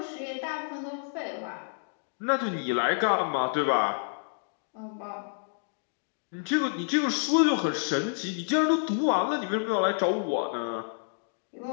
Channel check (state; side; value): silent; right; digital silence